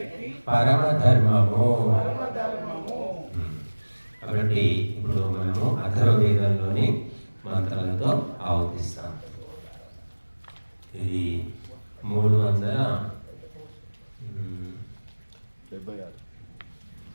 పరమధర్మము. కాబట్టి ఇప్పుడు మనము అథర్వవేదంలోని మంత్రాలతో ఆవతిస్తాం. ఇది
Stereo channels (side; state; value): both; inverted; correlation -1.00